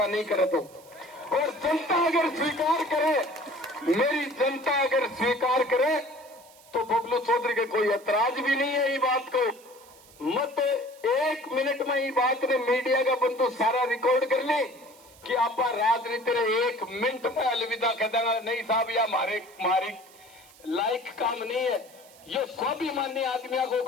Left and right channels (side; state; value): right; noise; hiss, 24 dB below the sound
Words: नहीं करे तो, और जनता अगर स्वीकार करे, मेरी जनता अगर स्वीकार करे तो बबलू चौधरी के कोई ऐतराज भी नहीं है। ये बात को मत 1 मिनट में ये बात ने मीडिया का बंदू सारा रिकॉर्ड कर ले कि आप राजनीति रे 1 मिनट में अलविदा कर देना नहीं साहब, या हमारे लायक काम नहीं है, ये स्वाभिमानी आदमियों को